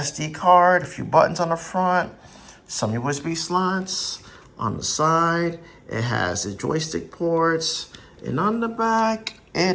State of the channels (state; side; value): identical; both; correlation 1.00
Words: card, a few buttons on the front, some USB slots on the side. It has the joystick ports, and on the back,